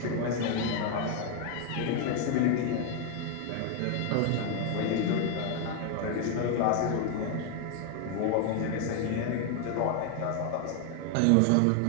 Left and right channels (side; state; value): both; different; correlation 0.00